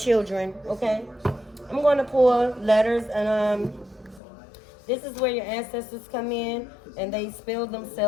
okay? I'm going to pull letters, and this is where your ancestors come in, and they spill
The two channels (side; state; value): right; drops out; at 4.2 s